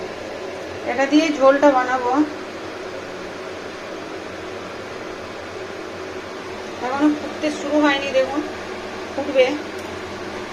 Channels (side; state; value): both; identical; correlation 1.00